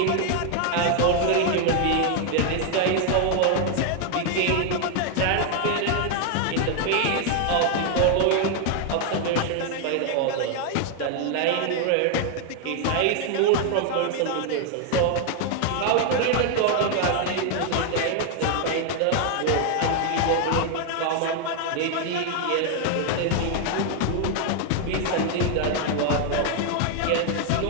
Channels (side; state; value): both; different; correlation 0.00